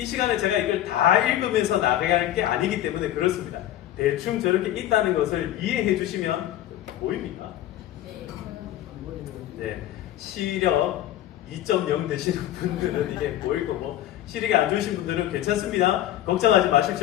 시간에 제가 이걸 다 읽으면서 나갈 게 아니기 때문에 그렇습니다. 대충 저렇게 있다는 것을 이해해 주시면 보입니까? 네, 시력 2.0 되시는 분들은 이게 보일 거고 시력이 안 좋으신 분들은 괜찮습니다. 걱정하지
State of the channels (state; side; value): quieter; right; 13.0 dB